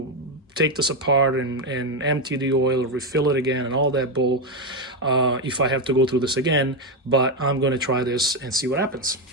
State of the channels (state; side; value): normal; both; correlation 0.07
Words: take this apart and empty the oil, refill it again, and all that bull, if I have to go through this again. But I'm going to try this and see what happens.